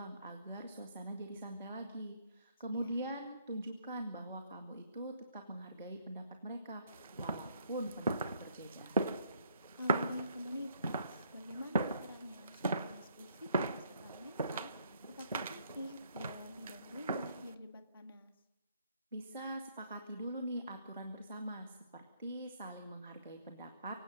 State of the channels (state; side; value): inverted; both; correlation -0.67